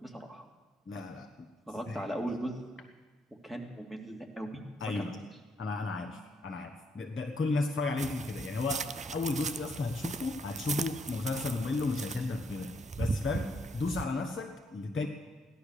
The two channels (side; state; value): both; normal; correlation 0.75